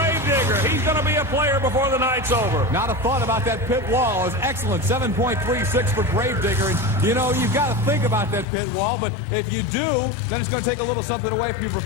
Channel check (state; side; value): drops out; right; at 8.5 s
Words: He's going to be a player before the night's over. Not a thought about that pit wall. Is excellent. 7.36 for Gravedigger. And, you've got to think about that pit wall, but if you do, then it's going to take a little something away from your